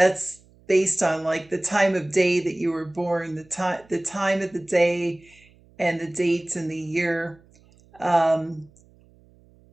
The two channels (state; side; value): noise; right; hum, 29 dB below the sound